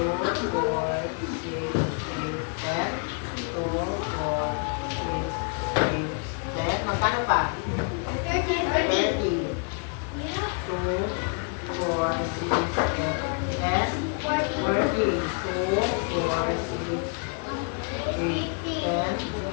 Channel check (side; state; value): right; quieter; 37.3 dB